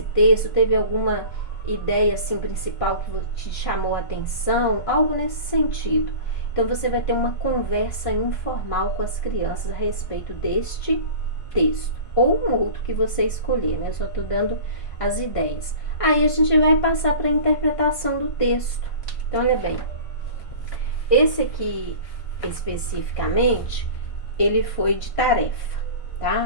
texto, teve alguma ideia assim principal que te chamou a atenção, algo nesse sentido. Então você vai ter uma conversa informal com as crianças a respeito deste texto ou um outro que você escolher, né? Eu só estou dando as ideias. Aí a gente vai passar para a interpretação do texto. Então olha bem, esse aqui especificamente, ele foi de tarefa,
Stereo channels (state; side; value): late; right; 1.5 ms